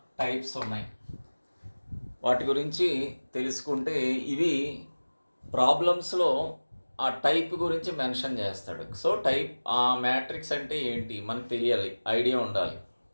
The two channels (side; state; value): both; inverted; correlation -1.00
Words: టైప్స్ ఉన్నాయి. వాటి గురించి తెలుసుకుంటే ఇవి ప్రాబ్లమ్స్లో ఆ టైప్ గురించి మెన్షన్ చేస్తాడు. సో ఆ మ్యాట్రిక్స్ అంటే ఏంటి మనకు తెలియాలి, ఐడియా ఉండాలి.